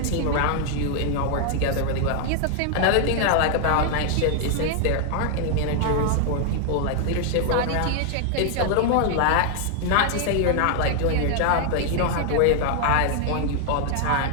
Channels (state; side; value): different; both; correlation 0.00